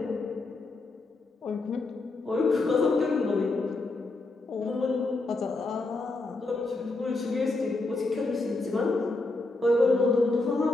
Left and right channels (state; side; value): quieter; right; 3.2 dB